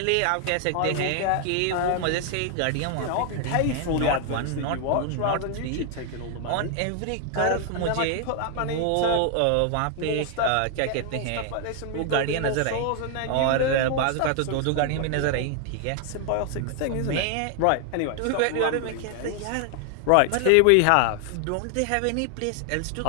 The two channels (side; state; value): both; different; correlation 0.00